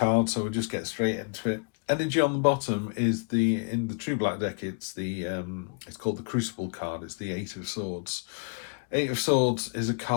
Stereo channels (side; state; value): right; quieter; 38.1 dB